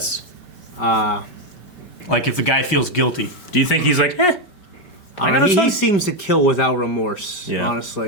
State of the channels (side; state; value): right; late; 5.2 ms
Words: Like if the guy feels guilty. Do you think he's like, I don't know, he seems to kill without remorse,